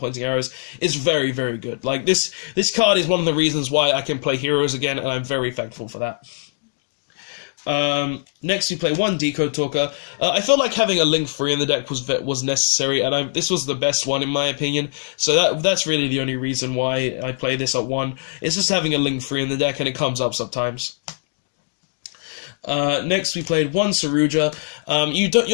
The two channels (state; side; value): silent; right; digital silence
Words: arrows is very, very good. Like, this card is one of the reasons why I can play heroes again, and I'm very thankful for that. Next we play one Decode Talker. I felt like having a Link 3 in the deck was necessary, and this was the best one in my opinion. So that's really the only reason why I play this at 1. It's just having a Link 3 in the deck, and it comes up sometimes. Next we played one Saruja.